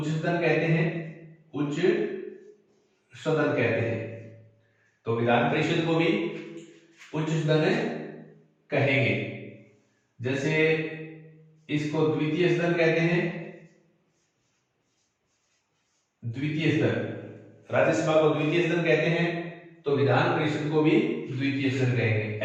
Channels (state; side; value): identical; both; correlation 1.00